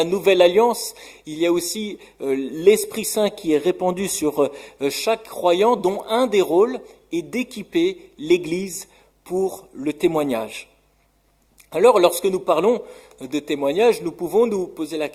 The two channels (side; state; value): both; identical; correlation 1.00